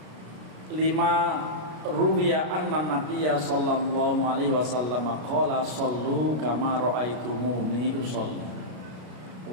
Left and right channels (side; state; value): left; late; 33 ms